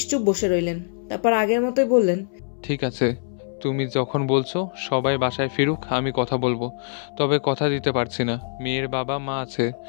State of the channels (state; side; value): silent; right; 63 dB below the other